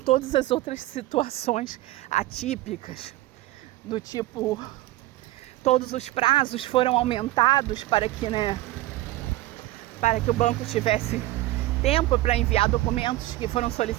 as outras situações atípicas, do tipo, todos os prazos foram aumentados para que o banco tivesse tempo para enviar documentos que foram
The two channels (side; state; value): left; quieter; 17.1 dB